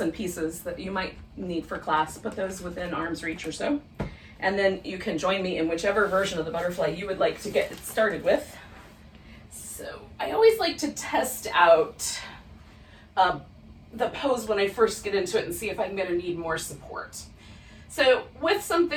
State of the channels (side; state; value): both; identical; correlation 1.00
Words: pieces that you might need for class, put those within arm's reach or so, and then you can join me in whichever version of the butterfly you would like to get started with. So I always like to test out the pose when I first get into it and see if I'm gonna need more support. So with